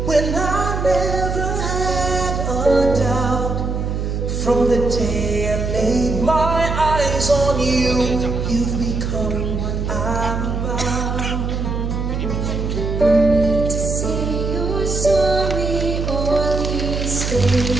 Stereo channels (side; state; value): right; noise; hum, 2 dB below the sound